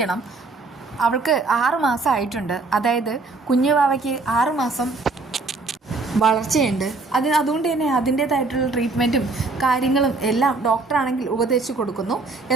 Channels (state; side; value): quieter; left; 3.7 dB